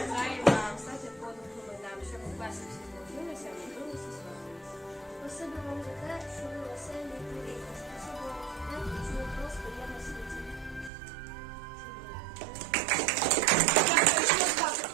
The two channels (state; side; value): drops out; left; at 10.9 s